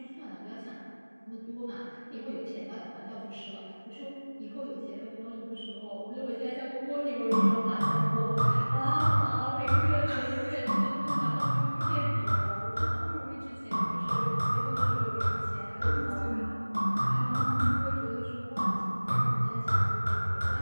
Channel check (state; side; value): inverted; both; correlation -1.00